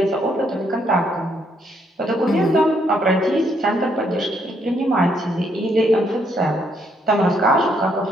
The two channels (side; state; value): both; normal; correlation 0.72